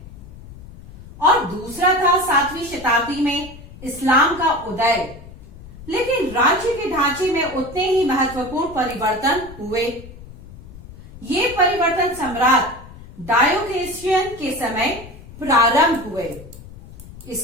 और दूसरा था 7वीं शताब्दी में इस्लाम का उदय। लेकिन राज्य के ढांचे में उतने ही महत्वपूर्ण परिवर्तन हुए। ये परिवर्तन सम्राट डायोक्लेशियन के समय प्रारंभ हुए।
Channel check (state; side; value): noise; left; rumble, 17 dB below the sound